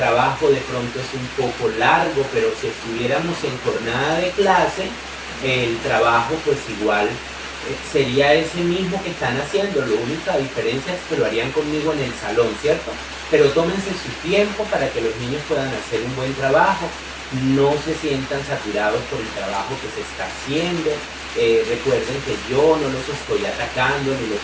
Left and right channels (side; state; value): both; identical; correlation 1.00